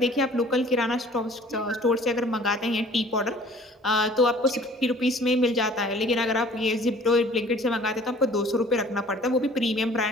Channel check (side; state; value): both; normal; correlation 0.51